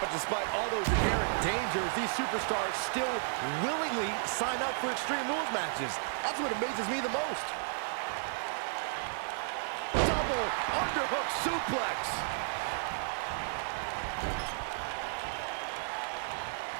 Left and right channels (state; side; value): silent; left; digital silence